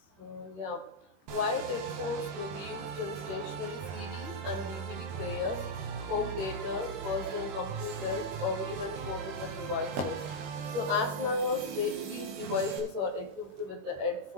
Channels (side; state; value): left; late; 21 ms